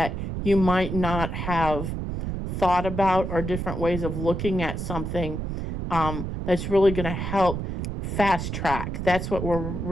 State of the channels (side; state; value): right; noise; rumble, 4 dB below the sound